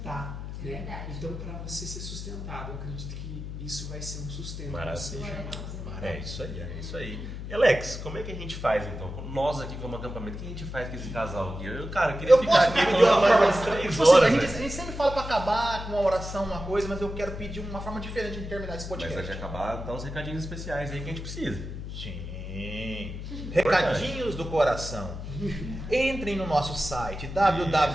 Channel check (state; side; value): noise; left; hum, 8 dB below the sound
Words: né? Então, para você ser sustentado, eu acredito que isso vai ser um sustento. Maravilha. É isso aí, é isso aí. E Alex, como é que a gente faz então? Nós aqui como acampamento, o que a gente faz com esse casal aqui? Eu queria ficar aqui pedir uma forma umas 3 tipo assim, horas. a gente sempre fala para acabar com uma oração, uma coisa, mas eu quero pedir uma forma diferente de terminar esse podcast. Mas antes de acabar, dá uns recadinhos especiais aí que a gente precisa. Sim. Recadinhos do coração. Entrem no nosso site